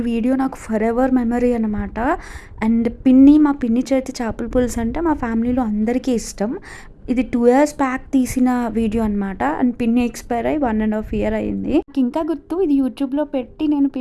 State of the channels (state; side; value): identical; both; correlation 1.00